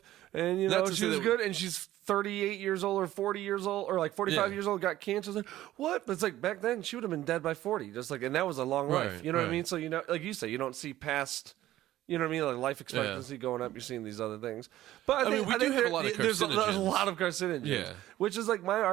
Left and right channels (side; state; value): left; quieter; 14.4 dB